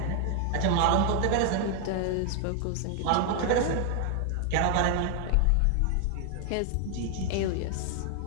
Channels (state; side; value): different; both; correlation 0.00